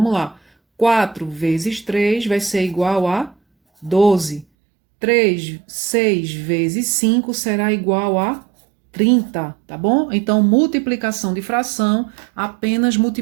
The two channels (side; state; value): left; drops out; at 4.5 s